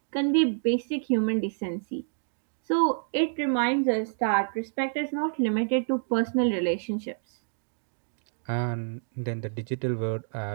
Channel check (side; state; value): left; silent; digital silence